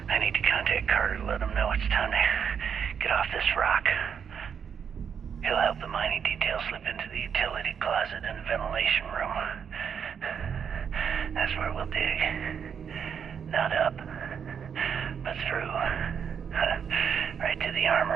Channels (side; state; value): left; quieter; 7.4 dB